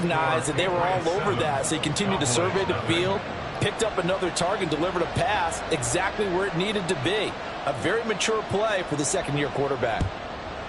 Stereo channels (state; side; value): identical; both; correlation 1.00